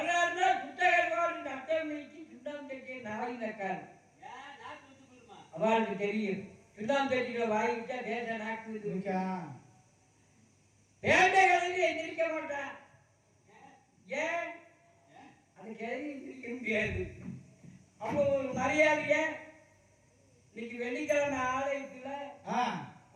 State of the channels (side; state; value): both; identical; correlation 1.00